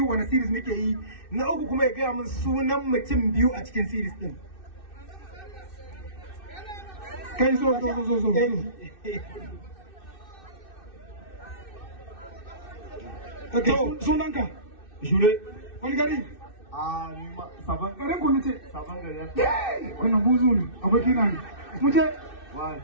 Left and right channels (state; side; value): late; right; 2.6 ms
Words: wani series muke yi na uku kuma ya gaya min sunan mutum biyu a cikin series din kai zo sunanka Jure. wani gari Sabon garin ku nace sabon gari. wannan buzu ne aboki na ne mu je